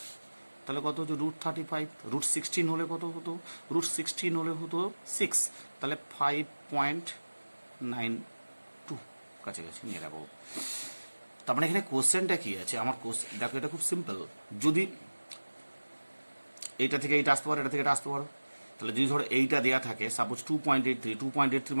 তাহলে কত হচ্ছে √35 √16 হলে কত হতো √16 হলে হতো 6 তাহলে 5.92 কাছাকাছি নিয়ে রাখবো তার মানে এখানে কোশ্চেনটা কি আছে আমার দেখো এটা খুব সিম্পল যদি এইটা থেকে এইটা আসতে পারো, এটা থেকে এটা আসতে পারো। তাহলে যদি ধরো এইটা দেওয়া থাকে সাপোজ 2.83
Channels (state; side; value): inverted; both; correlation -1.00